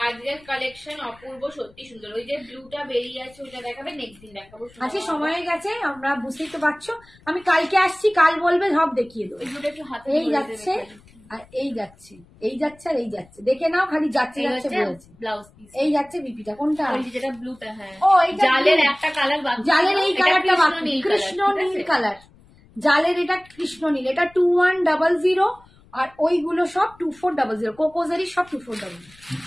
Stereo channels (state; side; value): noise; left; rumble, 27 dB below the sound